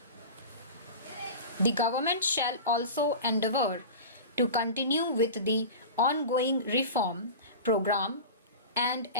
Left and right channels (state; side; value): inverted; both; correlation -0.30